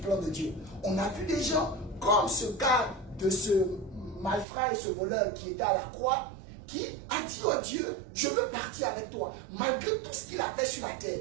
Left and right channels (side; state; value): left; drops out; at 4.5 s